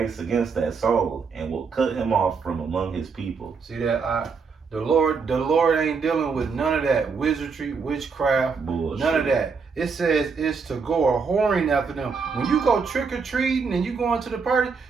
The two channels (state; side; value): quieter; left; 5.3 dB